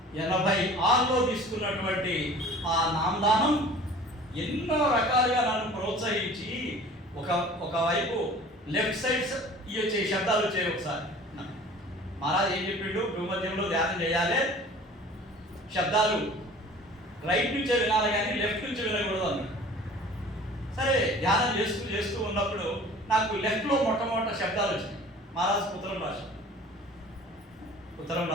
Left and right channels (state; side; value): normal; both; correlation 0.46